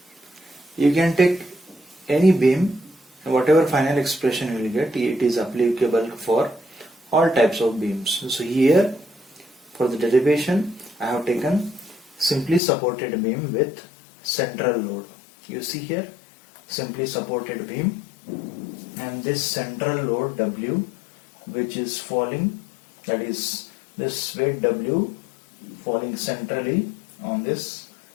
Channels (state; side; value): drops out; right; at 12.6 s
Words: you can take any beam, whatever final expression you will get, it is applicable for all types of beams. So here for the derivation I have taken simply supported beam with central load. You see here, simply supported beam, and this central load W which is falling, that is this weight W falling centrally on this